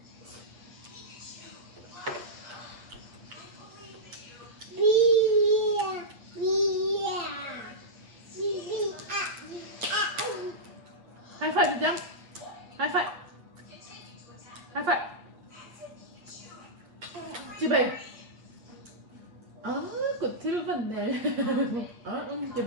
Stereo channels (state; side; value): late; left; 8.4 ms